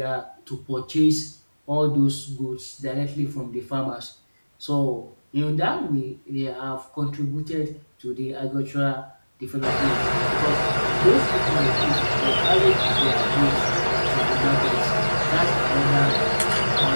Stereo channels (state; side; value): inverted; both; correlation -1.00